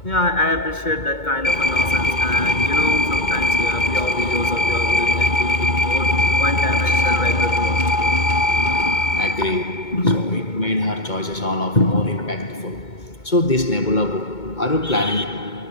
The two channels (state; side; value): late; right; 2.2 ms